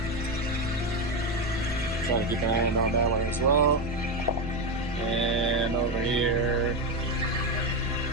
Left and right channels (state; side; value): noise; right; rumble, 11 dB below the sound